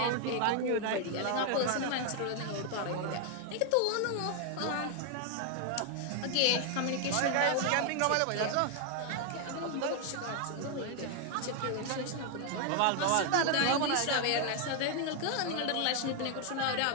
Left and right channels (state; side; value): different; both; correlation 0.00